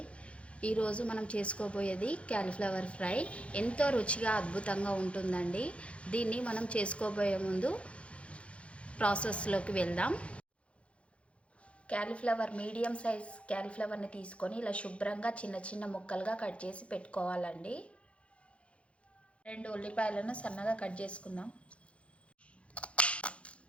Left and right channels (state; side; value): late; right; 0.061 ms